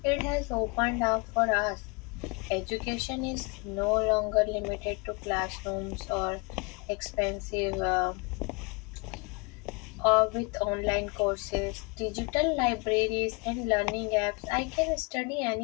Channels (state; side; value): quieter; right; 29.9 dB